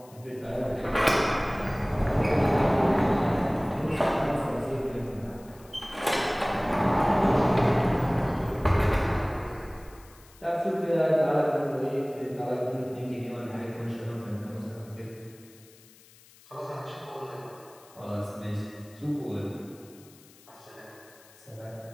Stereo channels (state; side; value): noise; left; hiss, 25 dB below the sound